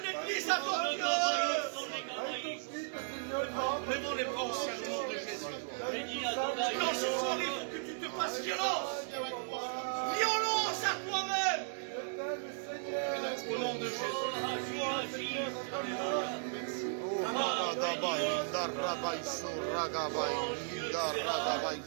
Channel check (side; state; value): left; silent; digital silence